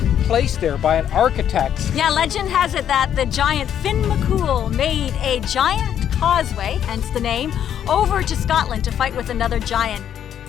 placed there by an architect. Yeah, legend has it that the giant Finn McCool made a giant causeway, hence the name, over to Scotland to fight with another giant.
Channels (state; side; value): quieter; right; 9.7 dB